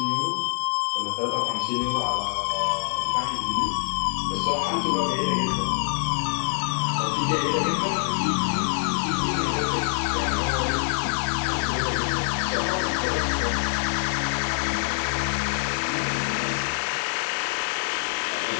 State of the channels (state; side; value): silent; right; digital silence